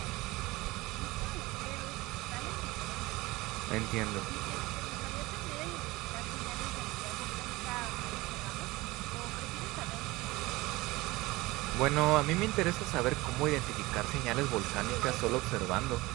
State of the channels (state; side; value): quieter; left; 20.7 dB